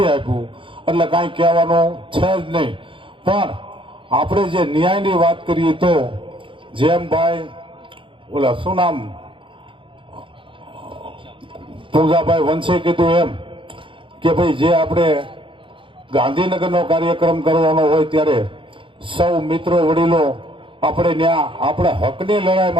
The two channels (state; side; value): late; left; 0.25 ms